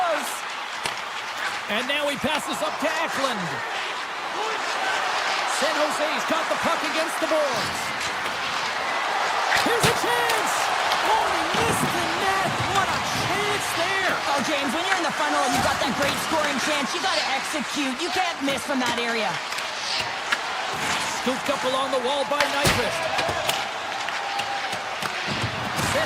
And now he passes up to Eklund. San Jose's got the puck against the boards. Here's a chance. Oh, he missed the net. What a chance there. Oh, James, when you're in the funnel and you've got that great scoring chance, you got to execute. You can't miss from that area. Scooped up along the wall by Nyquist.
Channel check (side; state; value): both; identical; correlation 1.00